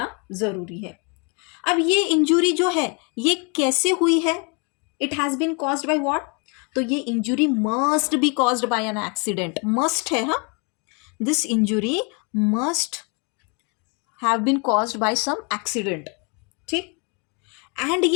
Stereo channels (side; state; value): right; quieter; 34.1 dB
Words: जरूरी है. अब ये इंजुरी जो है ये कैसे हुई है, it has been caused by what, तो ये injury must be caused by an accident. Must है, हाँ, this injury must have been caused by some accident. ठीक, एंड